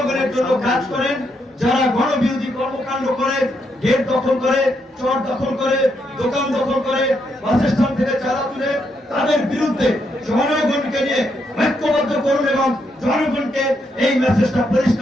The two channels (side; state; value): both; normal; correlation 0.78